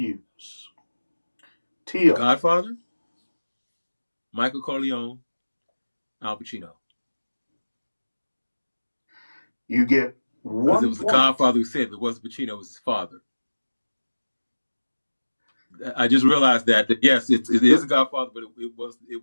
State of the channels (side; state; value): both; inverted; correlation -1.00